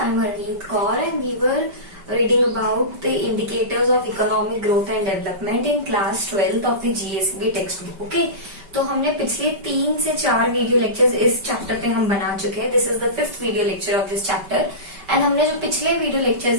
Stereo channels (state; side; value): late; left; 5.2 ms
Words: Harneet Kaur and we were reading about the indicators of economic growth and development in class 12th of the GSB textbook. Okay, तो हमने पिछले 3 से 4 video lectures इस chapter पे हम बना चुके हैं. This is the 5th video lecture of this chapter and हमने जो पिछले वीडियो